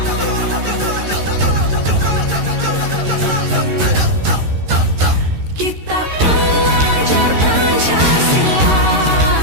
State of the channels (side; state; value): left; late; 13 ms